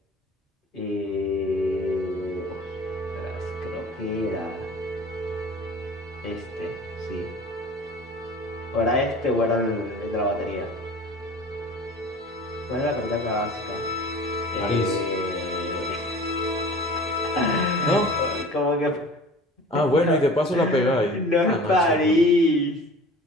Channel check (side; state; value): both; normal; correlation 0.42